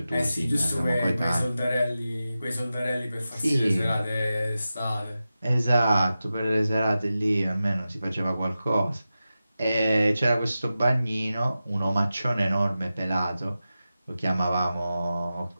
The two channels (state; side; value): inverted; both; correlation -0.93